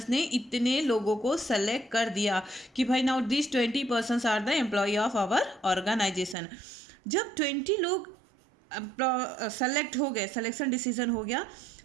ने इतने लोगों को सेलेक्ट कर दिया कि भाई now this 20% are the employ of our organization. जब 20 लोग सेलेक्ट हो गए, सिलेक्शन डिसीजन हो गया,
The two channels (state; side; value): drops out; left; at 6.4 s